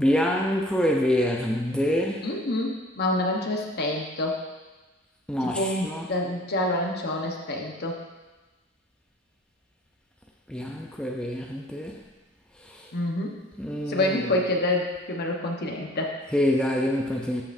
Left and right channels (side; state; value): both; normal; correlation 0.51